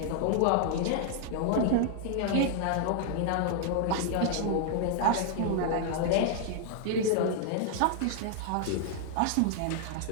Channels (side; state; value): both; different; correlation -0.01